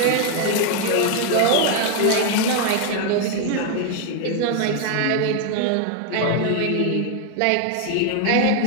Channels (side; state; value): both; different; correlation 0.00